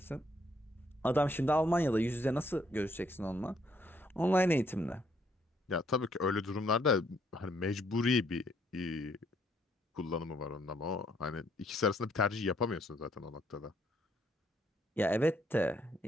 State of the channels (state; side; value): normal; both; correlation 0.69